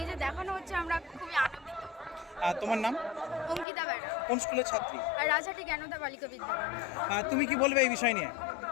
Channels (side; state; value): right; drops out; at 3.7 s